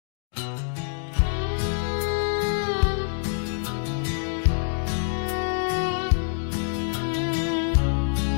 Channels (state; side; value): silent; right; digital silence